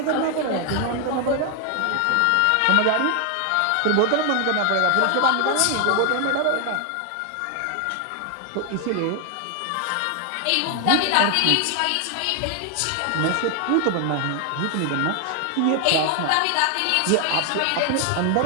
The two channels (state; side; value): different; both; correlation 0.00